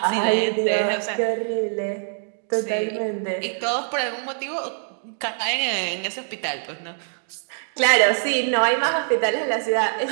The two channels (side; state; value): left; silent; digital silence